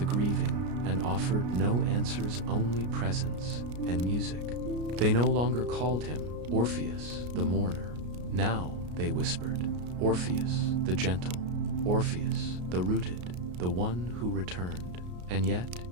grieving and offered no answers, only presence and music. They no longer called him Orpheus, the mourner. Now they whispered, Orpheus, the gentle, Orpheus, the rooted, the one who returned. And yet,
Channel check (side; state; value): left; late; 33 ms